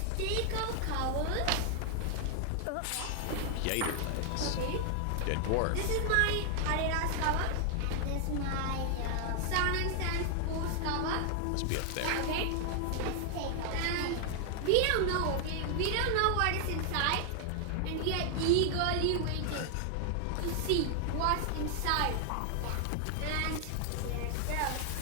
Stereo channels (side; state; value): both; different; correlation 0.00